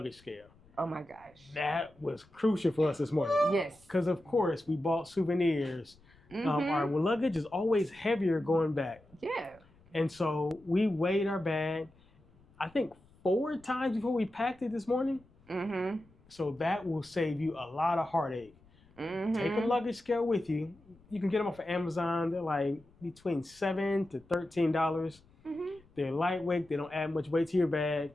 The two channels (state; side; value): noise; left; rumble, 28 dB below the sound